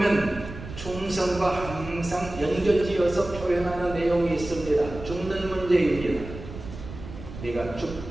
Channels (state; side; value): noise; right; rumble, 12 dB below the sound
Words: 충성과 항상 연결지어서 표현하는 내용이 있습니다. 죽는 문제입니다. 네가